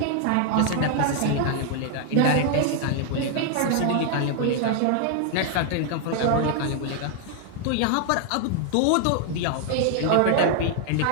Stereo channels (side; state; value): both; different; correlation 0.00